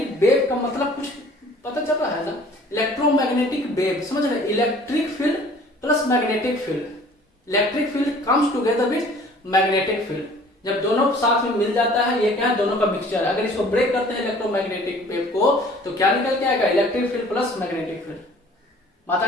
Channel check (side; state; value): both; normal; correlation 0.51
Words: वेव का मतलब कुछ पता चल रहा है ना। इलेक्ट्रोमैग्नेटिक वेव समझ रहे, electric field plus magnetic field. Electric field comes together with magnetic field. जब दोनों साथ में मिल जाता है, ये क्या है, दोनों का मिक्सचर है। अगर इसको ब्रेक करते हैं इलेक्ट्रोमैग्नेटिक वेव को, तो क्या निकल के आएगा, electric field plus magnetic field. बात आ